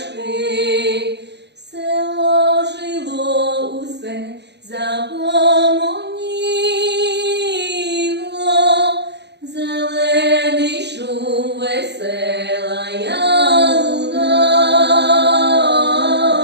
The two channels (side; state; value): left; late; 0.50 ms